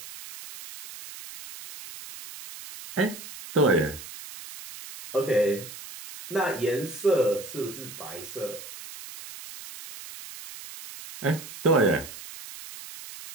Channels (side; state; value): right; noise; hiss, 14 dB below the sound